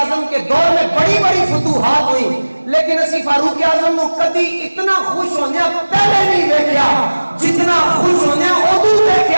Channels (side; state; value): both; inverted; correlation -1.00